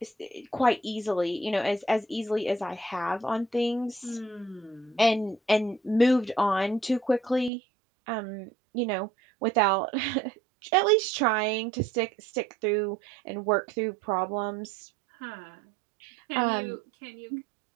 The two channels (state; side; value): drops out; left; at 7.5 s